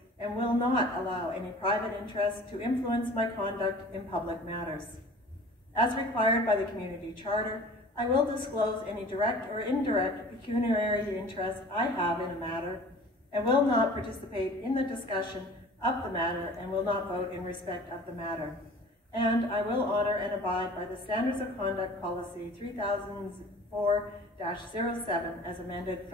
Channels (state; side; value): normal; both; correlation 0.44